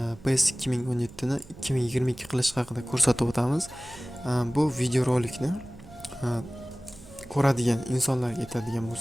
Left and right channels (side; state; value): right; noise; hum, 22 dB below the sound